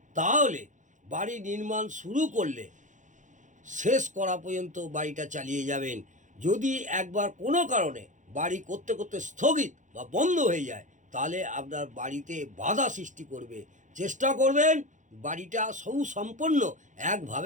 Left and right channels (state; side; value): late; left; 0.36 ms